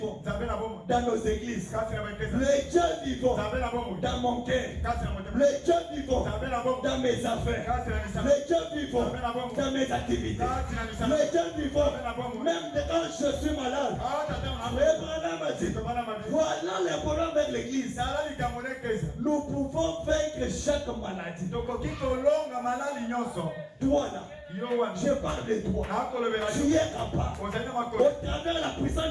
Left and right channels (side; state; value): both; identical; correlation 1.00